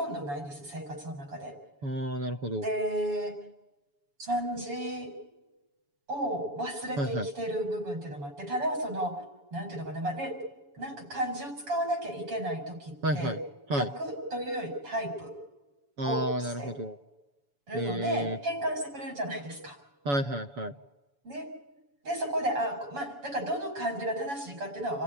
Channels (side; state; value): left; late; 7.1 ms